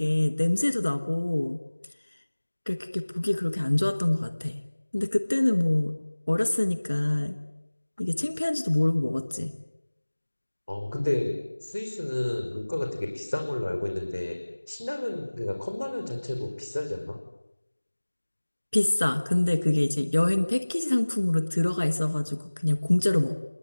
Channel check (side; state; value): both; inverted; correlation -1.00